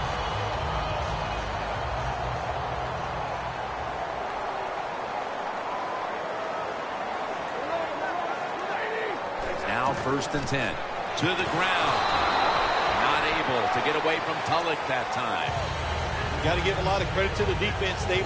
1st and 10. To the ground. Not able to get away from Tulloch that time. Got to give a lot of credit to the defense. They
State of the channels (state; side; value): identical; both; correlation 1.00